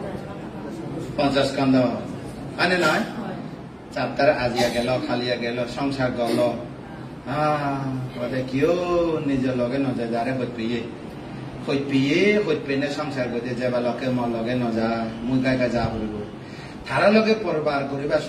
পঞ্চস্কন্ধ মানে নয় চাপ্তার আজিয়া গেল খালিয়া গেল সংসার গল কিয় নিজের লগে নজায় যারে হইত পিয়ে সংসার করতে যাবা লগে মর লগে নজা মুই গাই যা হইব তারা লগে পরবার করিবার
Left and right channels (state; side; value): identical; both; correlation 1.00